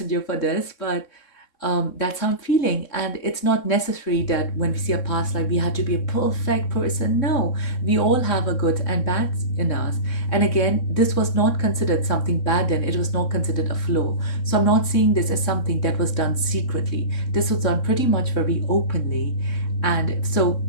for this, but that's how I'm feeling. And it's not necessary that when we see a past life, we have to be a perfect person. No, we all have a good and bad in us. And again, this was not considered something bad then, it was not considered a flaw. So I'm not seeing this as something that was done secretly. This was done pretty much very openly. And so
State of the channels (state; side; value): late; right; 3.7 ms